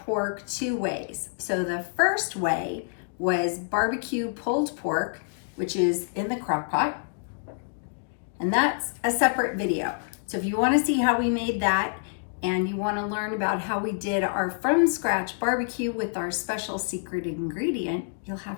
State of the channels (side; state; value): right; silent; digital silence